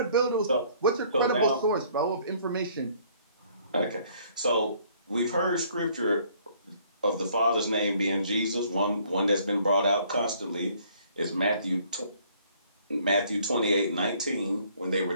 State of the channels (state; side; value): inverted; both; correlation -0.61